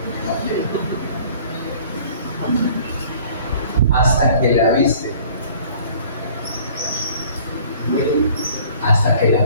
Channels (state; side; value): inverted; both; correlation -0.51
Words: hasta que la viste, hasta que